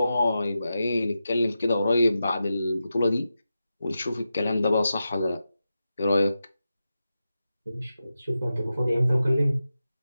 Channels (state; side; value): inverted; both; correlation -0.90